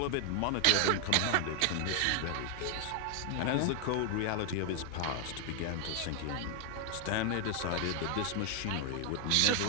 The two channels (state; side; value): different; both; correlation 0.01